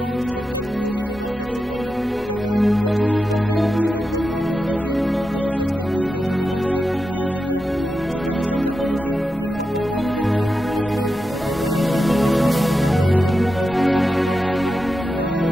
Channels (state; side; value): normal; both; correlation 0.89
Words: en disant quel projet je dois faire cette année, quel ceci je dois faire. Seigneur, donne-moi, ouvre les yeux pour que je sache quel business je vais lancer. Seigneur, cette année ça a déjà commencé, je ne vois pas encore d'ouverture. Est-ce que je vais voyager? Est-ce que je ne vais pas voyager? Est-ce que cette école c'est bon?